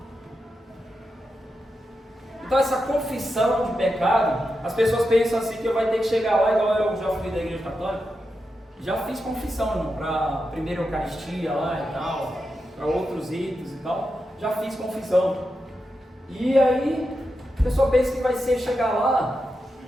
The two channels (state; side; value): normal; both; correlation 0.88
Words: Então essa confissão de pecado, as pessoas pensam assim que eu vai ter que chegar lá, igual eu já fui da igreja católica, já fiz confissão para a primeira Eucaristia lá e tal, para outros ritos e tal, já fiz confissão. E aí a pessoa pensa que vai ser chegar lá,